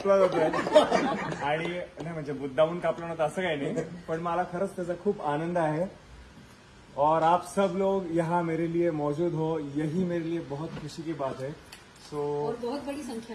जातोय आणि नाही म्हणजे मुद्दामून कापला नव्हता असं काही नाही, पण मला खरंच त्याचा खूप आनंद आहे. और आप सब लोग यहाँ मेरे लिए मौजूद हो, यही मेरे लिए बहुत खुशी की बात है. और बहुत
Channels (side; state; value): both; identical; correlation 1.00